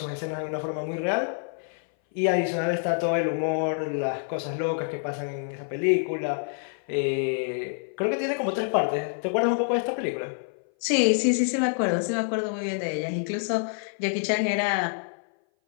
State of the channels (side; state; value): right; silent; 58 dB below the other